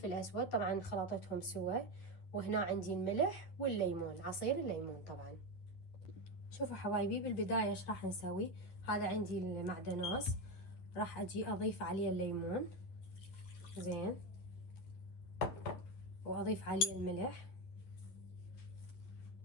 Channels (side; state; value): right; late; 11 ms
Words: اسود، طبعا خلطتهم سوا. وهنا عندي الملح والليمون، عصير الليمون طبعا. شوفوا حبايبي، بالبداية ايش راح نسوي. هذا عندي المعدنوس، راح اجي اضيف عليه الليمون زين، واضيف عليه الملح،